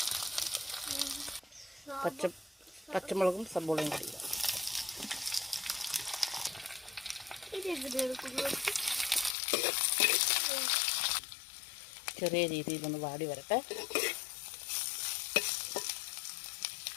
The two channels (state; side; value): drops out; right; at 9.3 s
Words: പച്ചമുളകും സബോളയും കൂടി ഇടാം. ചെറിയ രീതിയിലൊന്ന് വാടി വരട്ടെ.